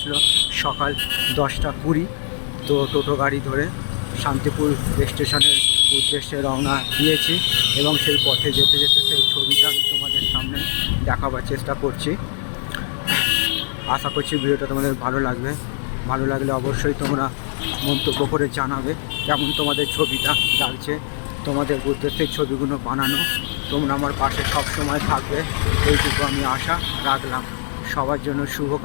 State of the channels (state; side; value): silent; right; digital silence